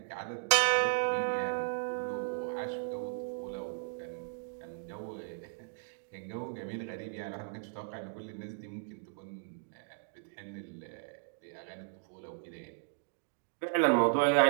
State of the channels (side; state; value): left; silent; digital silence